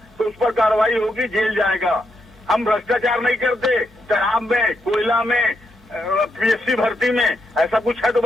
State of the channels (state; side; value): normal; both; correlation 0.81